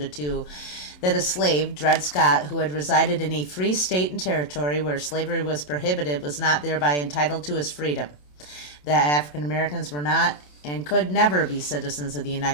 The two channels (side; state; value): right; late; 27 ms